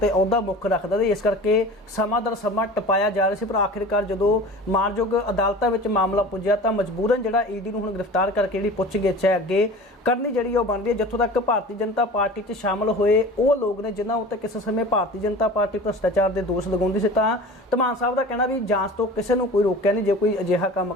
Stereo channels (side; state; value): both; normal; correlation 0.38